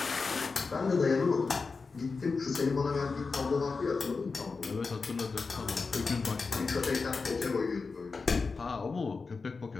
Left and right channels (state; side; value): quieter; right; 4.5 dB